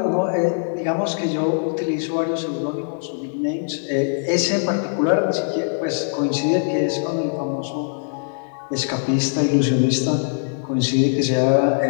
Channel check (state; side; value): silent; right; 64 dB below the other